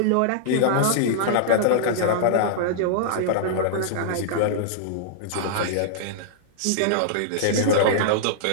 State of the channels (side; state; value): both; different; correlation -0.02